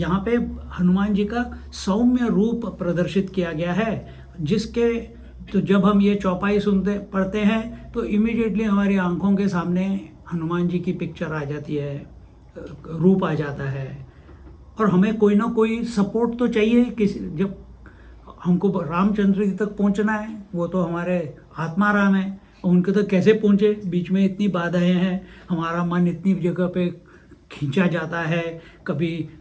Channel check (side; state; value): both; identical; correlation 1.00